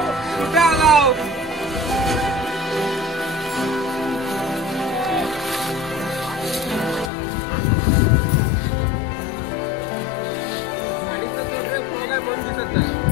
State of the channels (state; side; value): drops out; right; at 7.1 s